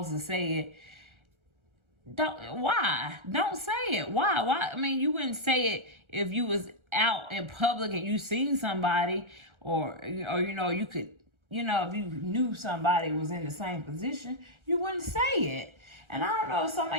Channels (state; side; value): late; left; 1.4 ms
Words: to say it. Why? Don't say it. Why? I mean, you wouldn't say it if you was out in public and you seen somebody, or you could, if you knew somebody was in the same position, you wouldn't say it. And I don't know if some of